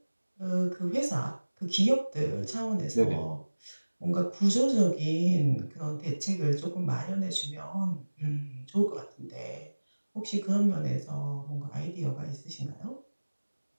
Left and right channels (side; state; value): both; inverted; correlation -1.00